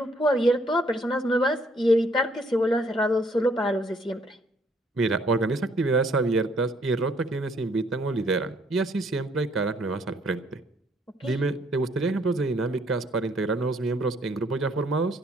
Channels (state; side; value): normal; both; correlation 0.66